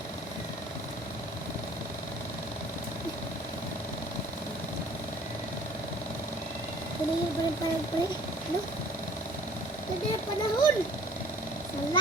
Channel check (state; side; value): normal; both; correlation 0.51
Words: Panayin pa rin pare. Ano? Ganda yung panahon.